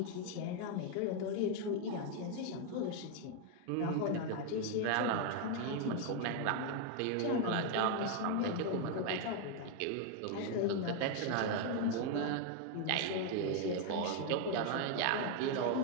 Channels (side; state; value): both; different; correlation 0.00